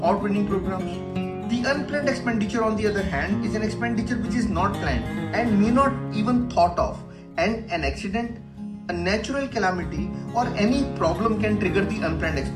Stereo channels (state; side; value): identical; both; correlation 1.00